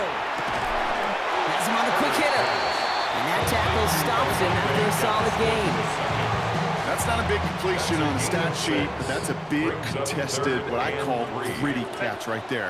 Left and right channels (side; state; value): both; identical; correlation 1.00